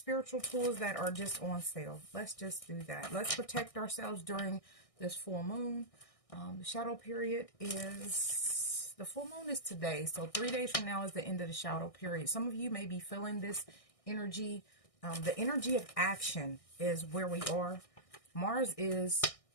tools that are just on sale. Let's just do that. Let's protect ourselves during this full moon. The shadow period is... The full moon is today, so 3 days from now is the end of the shadow period. Some of you may be feeling this energy. The energy of action is where we are. Mars is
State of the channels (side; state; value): right; late; 1.6 ms